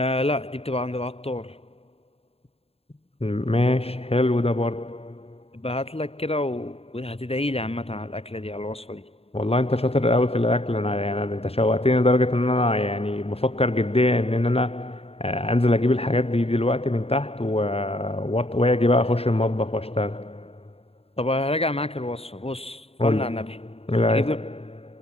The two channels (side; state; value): right; late; 0.29 ms